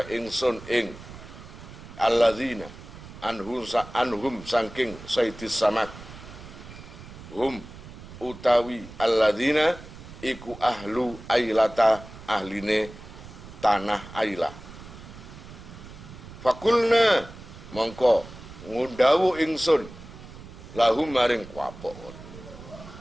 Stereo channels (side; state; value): right; noise; rumble, 16 dB below the sound